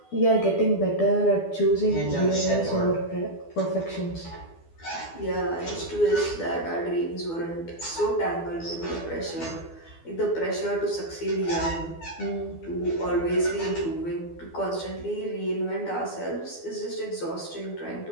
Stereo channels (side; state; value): right; late; 12 ms